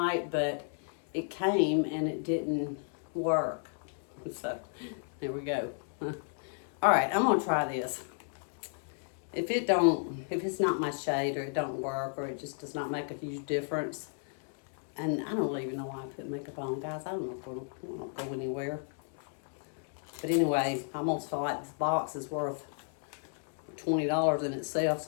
but it came and it didn't work. So, there we go. Alright, I'm going to try this. If it's not my shade, or it don't work, or it just does not make a huge difference, and I don't even know why I put makeup on, guys. I don't know if it'll go anywhere. But anyway, I almost feel like this box is worth $20 in itself,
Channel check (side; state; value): right; silent; 56 dB below the other